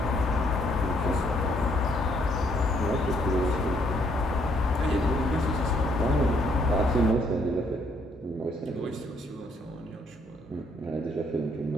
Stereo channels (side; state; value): both; normal; correlation 0.69